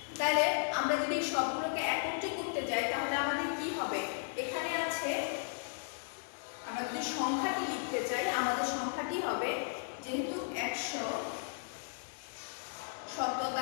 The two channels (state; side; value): silent; right; digital silence